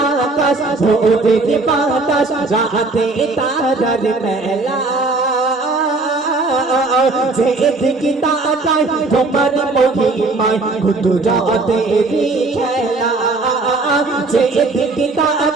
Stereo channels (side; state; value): left; quieter; 3.5 dB